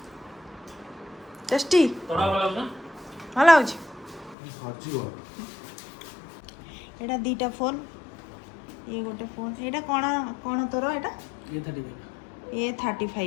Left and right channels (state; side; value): drops out; right; at 4.4 s